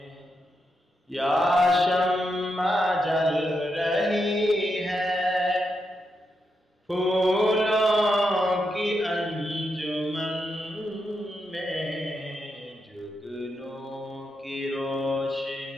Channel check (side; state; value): both; normal; correlation 0.84